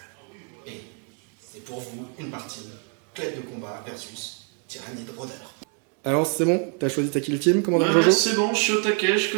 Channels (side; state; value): left; quieter; 40.0 dB